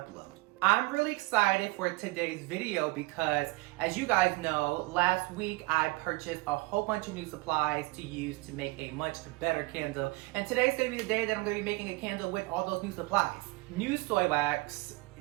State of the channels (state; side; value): quieter; left; 23.8 dB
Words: I'm really excited for today's video because, as you guys know, last week I purchased a whole bunch of new supplies to use to make a much better candle. And today's gonna be the day that I'm gonna be making a candle with all those new supplies. New soy wax,